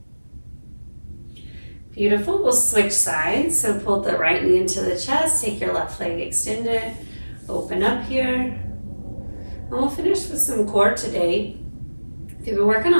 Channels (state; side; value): inverted; both; correlation -1.00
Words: Beautiful. We'll switch sides. So pull the right knee into the chest, take your left leg extended, open up here. And we'll finish with some core today. If you've been working